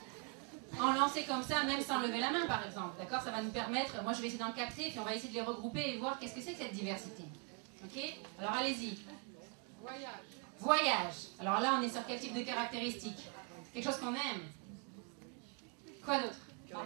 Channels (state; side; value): quieter; left; 35.0 dB